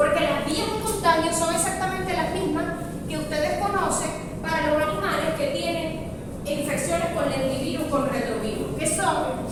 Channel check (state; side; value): identical; both; correlation 1.00